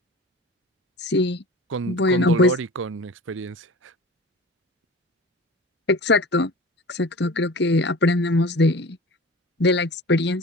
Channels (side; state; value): both; normal; correlation 0.37